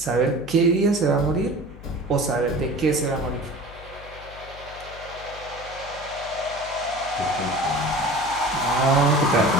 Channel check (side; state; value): left; noise; hum, 18 dB below the sound